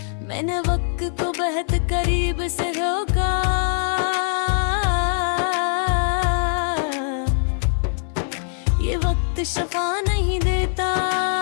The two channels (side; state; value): right; silent; digital silence